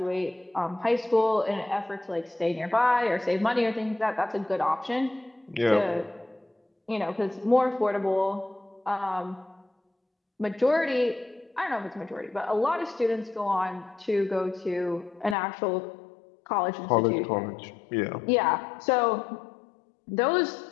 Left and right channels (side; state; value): right; drops out; at 15.4 s